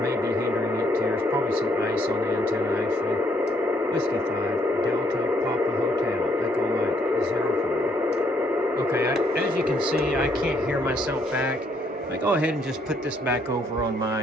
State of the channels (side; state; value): both; normal; correlation 0.70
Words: may be hindering it too. There's probably some ice on the antenna actually. Whiskey 5, Delta Papa Hotel, Echo Mike 04. Okay, as you can see, I can't hear myself back. I go ahead and just put this back over on